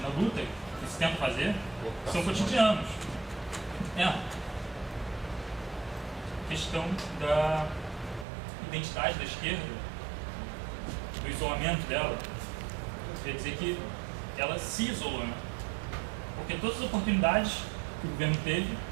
luta que se tenta fazer são cotidianos. A questão da identidade da esquerda, do isolamento dela, quer dizer que ela se isolou, né? Porque todas as oportunidades que o governo teve,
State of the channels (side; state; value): left; drops out; at 8.2 s